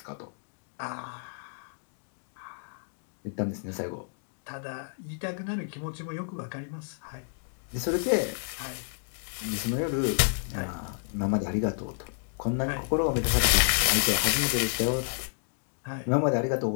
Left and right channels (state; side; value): silent; right; digital silence